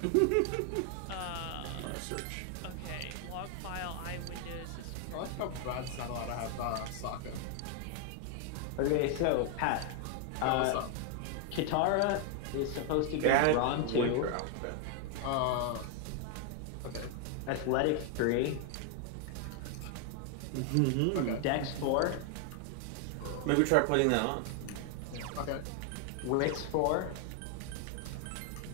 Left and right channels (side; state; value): both; different; correlation 0.00